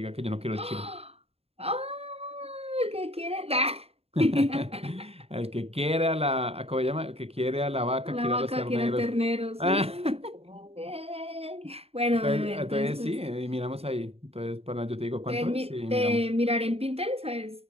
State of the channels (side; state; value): left; late; 0.29 ms